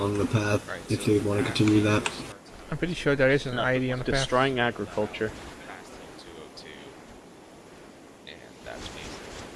the path if they want to continue that? I'm pretty sure there is an ID on the path. Destroying agriculture.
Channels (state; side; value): identical; both; correlation 1.00